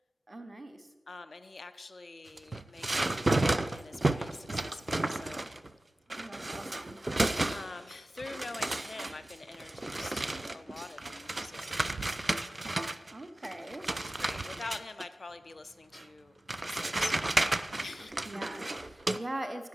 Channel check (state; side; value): normal; both; correlation 0.96